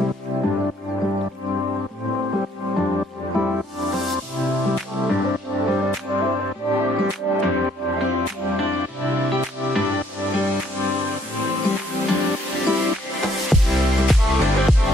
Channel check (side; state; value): both; normal; correlation 0.66